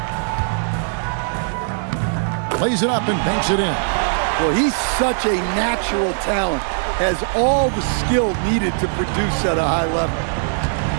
Plays it up and banks it in. Well, he's such a natural talent. Has all the skill needed to produce at a high level.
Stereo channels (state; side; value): silent; left; 60 dB below the other